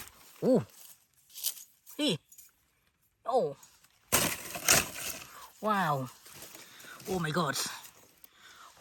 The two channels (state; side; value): identical; both; correlation 1.00